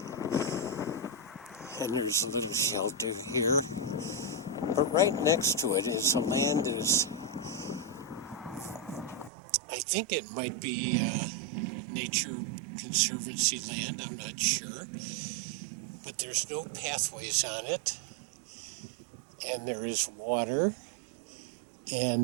And there's a little shelter here. But right next to it is a land that is, I think it might be Nature Conservancy land, I'm not sure. But there's no pathways on it. And there is water.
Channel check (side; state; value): left; drops out; at 9.3 s